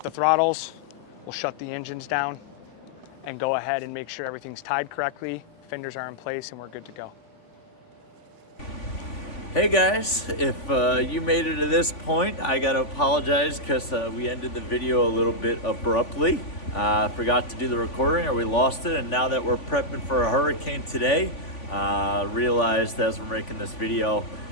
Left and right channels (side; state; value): right; late; 3.5 ms